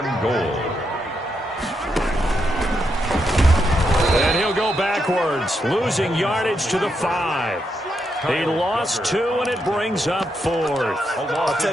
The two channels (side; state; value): both; normal; correlation 0.81